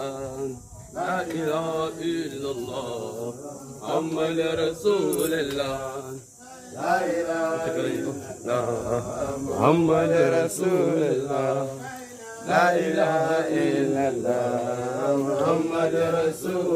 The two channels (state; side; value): identical; both; correlation 1.00